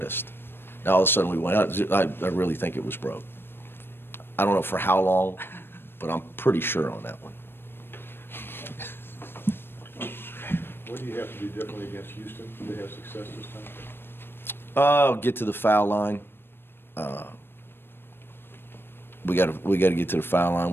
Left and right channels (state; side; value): late; right; 0.10 ms